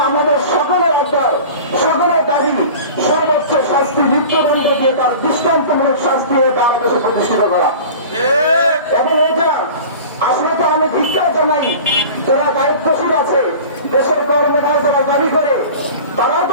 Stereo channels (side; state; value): both; inverted; correlation -0.39